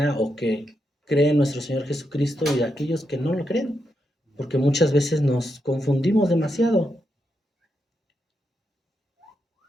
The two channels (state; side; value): normal; both; correlation 0.84